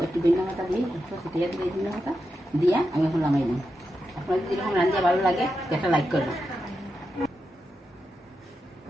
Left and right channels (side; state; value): both; normal; correlation 0.88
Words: একটু ধনিয়া পাতা দিয়ে একটু ছিটিয়ে দিয়ে ধনিয়া পাতা দিয়ে আমি এখন নামাই নিই। আপনাদের যেরকম রান্না ভালো লাগে একটা লাইক করবেন।